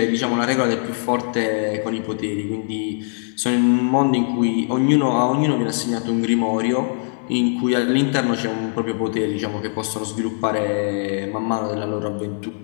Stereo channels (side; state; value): right; silent; 65 dB below the other